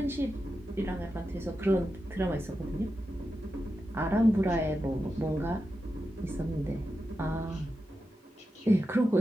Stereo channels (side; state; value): both; normal; correlation 0.90